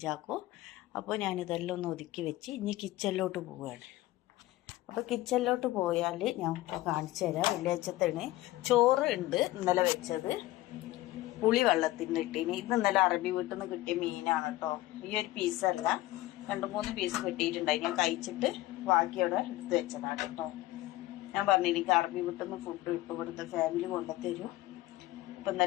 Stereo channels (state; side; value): quieter; right; 17.1 dB